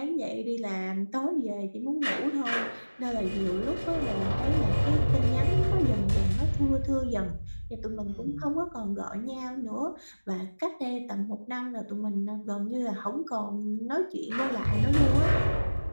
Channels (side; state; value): both; inverted; correlation -1.00